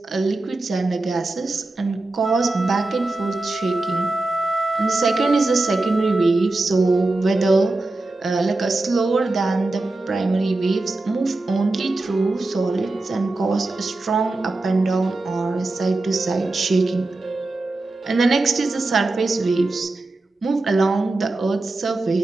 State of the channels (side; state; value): left; quieter; 3.1 dB